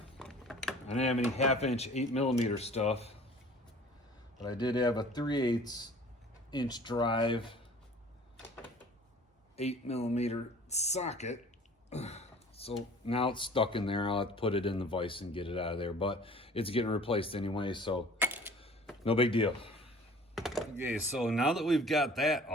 I didn't have any 1/2-inch 8mm stuff, but I did have a 3/8-inch drive 8mm socket. So now it's stuck in there. I'll have to put it in the vise and get it out of there, but it's getting replaced anyway, so no big deal. Okay, so now that we've got that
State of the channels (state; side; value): normal; both; correlation 0.48